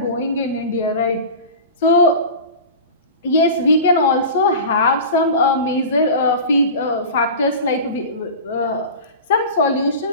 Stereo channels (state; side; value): inverted; both; correlation -0.33